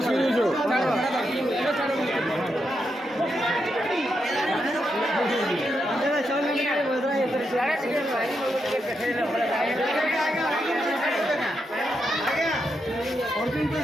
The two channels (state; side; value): normal; both; correlation 0.83